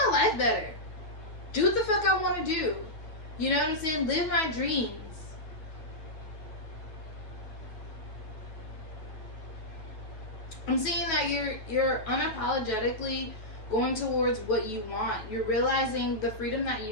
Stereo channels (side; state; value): right; late; 9.3 ms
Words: life better. Do what the fuck I want to do. You know what I'm saying? Live my dreams. I'm seeing that you're unapologetically going towards what you want. You're realizing the freedom that